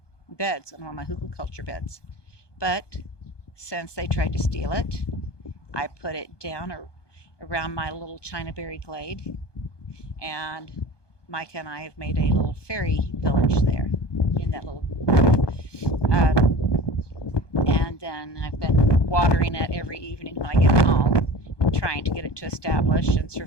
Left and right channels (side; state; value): right; late; 1.2 ms